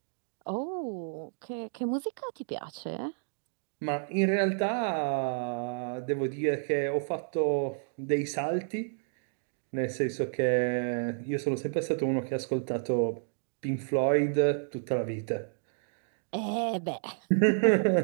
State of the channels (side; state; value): left; silent; digital silence